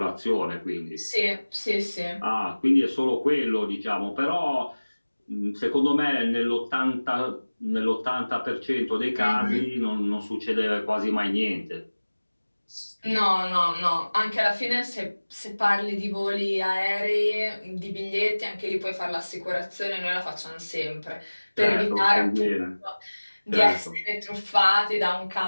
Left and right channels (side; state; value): both; inverted; correlation -1.00